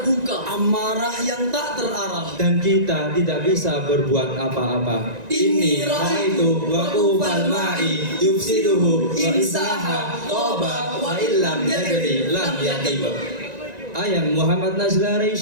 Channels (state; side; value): late; left; 1.9 ms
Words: Amarah yang tak terarah. dan kita tidak bisa berbuat apa-apa. Ini raitu wa ubal ma'i yufsiduhu wa isaha toba wa illam yadri lam yaqib. I am Muhammad Nazla